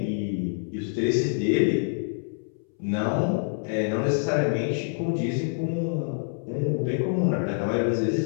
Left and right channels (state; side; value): silent; right; 61 dB below the other